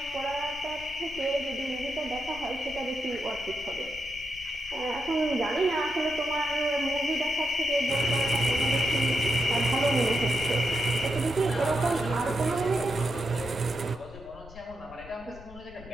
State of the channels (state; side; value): noise; left; rumble, 18 dB below the sound